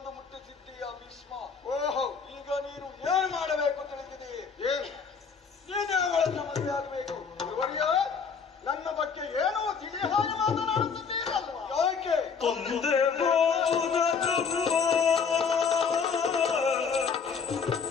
ಮುಟ್ಟಿಸಿದ್ದೀಯ ಭೀಷ್ಮ. ಓಹೋ, ಈಗ ನೀನು ಏನು ಮಾಡಬೇಕು ತಿಳಿದಿದೆ? ಏನು? ನೀನೇ ಅವಳನ್ನ ಮದುವೆ ಆಗಬೇಕು. ಗುರುವರಿಯ, ನನ್ನ ಬಗ್ಗೆ ಏನೋ ತಿಳಿ ಹಾಗೆ ಮಾತನಾಡುತ್ತಿದ್ದೀರಲ್ವಾ? ಯಾಕೆ? ತಂದೆ ಬೋಧ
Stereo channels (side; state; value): right; quieter; 5.8 dB